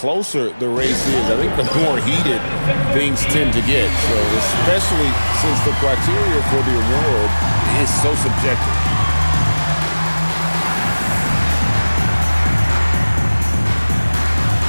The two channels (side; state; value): both; inverted; correlation -1.00